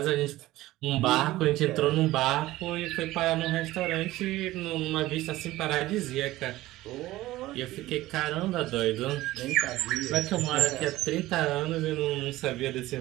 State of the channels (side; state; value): left; quieter; 16.9 dB